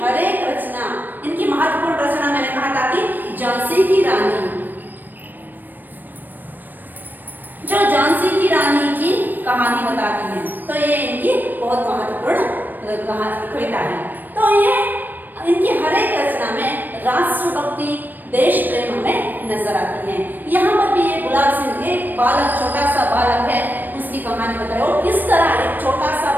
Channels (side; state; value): left; late; 0.090 ms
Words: हर एक रचना, इनकी महत्वपूर्ण रचना मैंने कहा था कि झांसी की रानी, जो झांसी की रानी की कहानी बताती है, तो ये इनकी बहुत महत्वपूर्ण कविता है। तो ये इनकी हर एक रचना में राष्ट्रभक्ति, देश प्रेम हमें नजर आती है। यहाँ पर भी ये गुलाब सिंह एक बालक, छोटा सा बालक है, उसकी कहानी बताई, और किस तरह एक छोटा सा